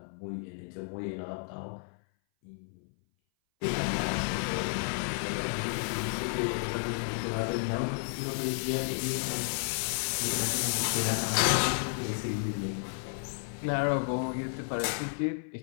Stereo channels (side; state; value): right; silent; 56 dB below the other